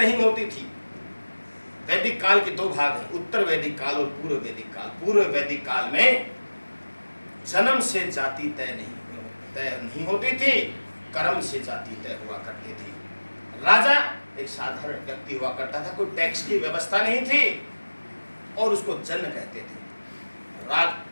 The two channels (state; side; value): inverted; both; correlation -1.00